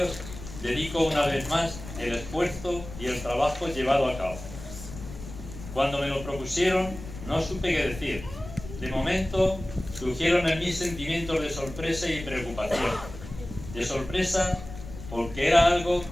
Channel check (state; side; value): noise; left; rumble, 12 dB below the sound